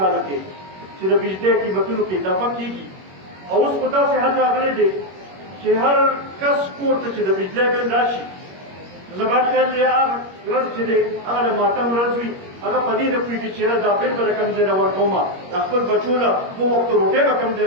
کې چې د بجلۍ قیمتونو کې اضافه کېږي او اوس په داسې حد راغلی دی چې هر کس کور ته چې د بجلۍ بل راشي زما خیال دی هغه ورځ چې دی هغه د ماتم ورځ وي هغه په دې نه پوهېږي چې یاره دا بل به د کوم ځای نه ورکومه د خپل بچو له 2 وخته روټۍ به کوم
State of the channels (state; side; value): late; left; 21 ms